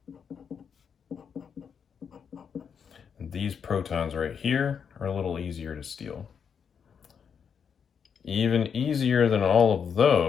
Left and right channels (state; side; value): quieter; right; 7.0 dB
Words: And these protons right here are a little easier to steal. Even easier than all of